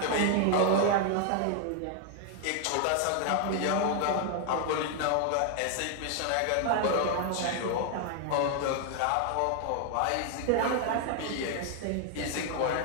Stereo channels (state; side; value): different; both; correlation 0.00